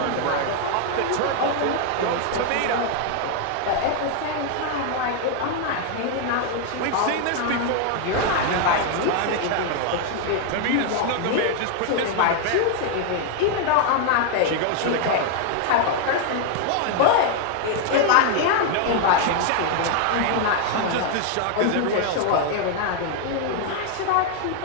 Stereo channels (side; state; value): both; different; correlation 0.00